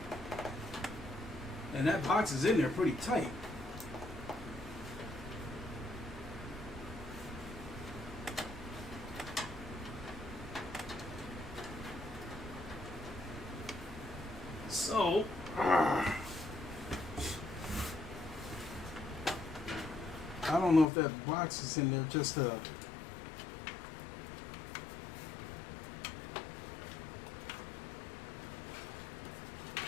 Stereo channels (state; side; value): drops out; right; at 20.9 s